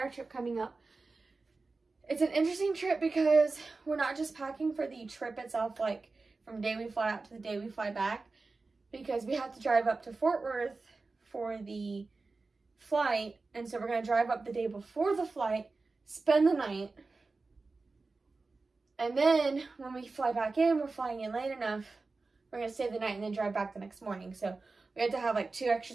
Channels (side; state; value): left; quieter; 3.8 dB